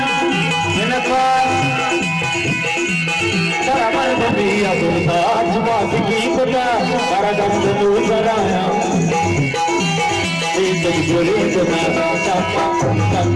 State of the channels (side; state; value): both; identical; correlation 1.00